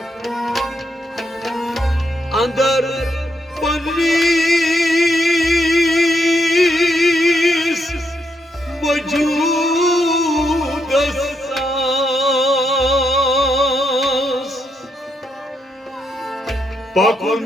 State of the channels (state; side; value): normal; both; correlation 0.79